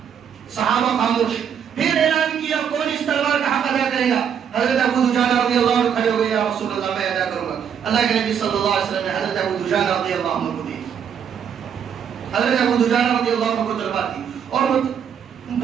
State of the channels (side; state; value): left; quieter; 8.0 dB